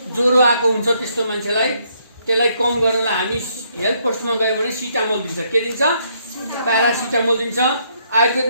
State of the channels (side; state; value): both; inverted; correlation -0.72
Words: ज्वरो आएको हुन्छ, त्यस्तो मान्छेलाई त्यसलाई कम गर्नलाई हामी हेल्थ पोस्टमा गयो भने सिटामोल दिन्छ। के दिन्छ? प्यारासिटामोल दिन्छ।